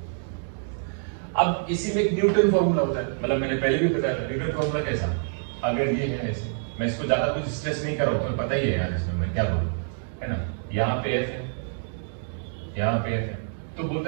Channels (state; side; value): silent; left; digital silence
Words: अब इसी में एक न्यूटन फॉर्मूला होता है, मतलब मैंने पहले भी बताया था न्यूटन फॉर्मूला कैसा, अगर ये है ऐसे, मैं इसको ज्यादा कुछ स्ट्रेस नहीं कर रहा हूं, तुम्हें पता ही है यार इसमें मैं क्या बोलूं, है ना। यहाँ पे एफ है, यहाँ पे एफ है, तो